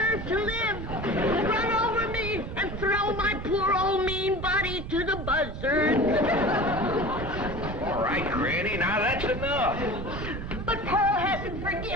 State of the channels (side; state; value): right; noise; rumble, 7 dB below the sound